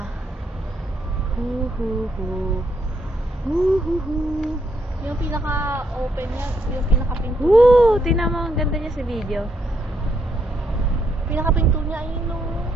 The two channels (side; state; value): both; normal; correlation 0.76